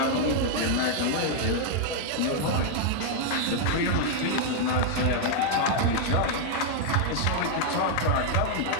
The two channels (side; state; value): both; different; correlation 0.00